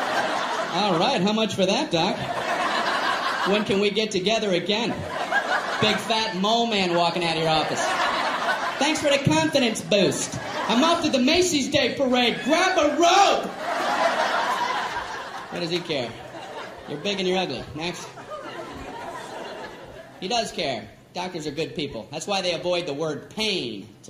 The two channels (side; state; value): both; identical; correlation 1.00